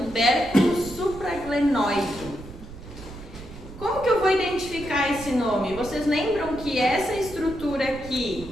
supraglenoide. Como que eu vou identificar esse nome? Vocês lembram que essa estrutura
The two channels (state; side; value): noise; right; rumble, 15 dB below the sound